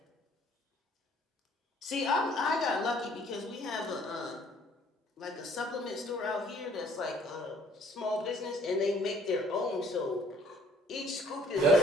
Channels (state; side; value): normal; both; correlation 0.59